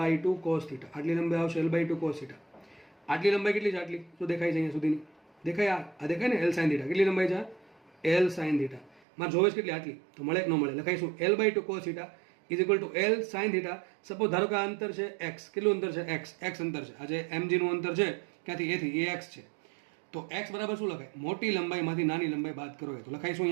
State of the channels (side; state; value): left; drops out; at 9.0 s